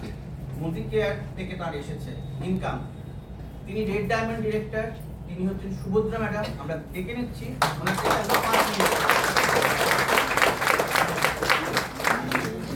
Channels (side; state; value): both; identical; correlation 1.00